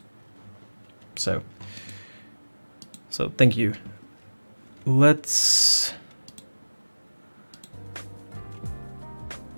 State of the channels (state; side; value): inverted; both; correlation -1.00